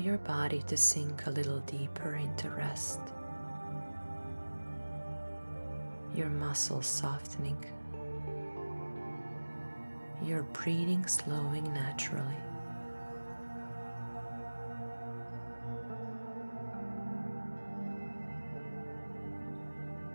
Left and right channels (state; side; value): inverted; both; correlation -1.00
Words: body to sink a little deeper into rest. Your muscles softening. Your breathing slowing naturally.